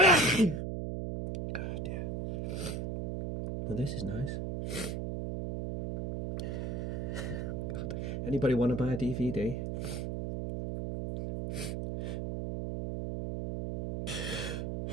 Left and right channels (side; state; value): right; noise; hum, 3 dB below the sound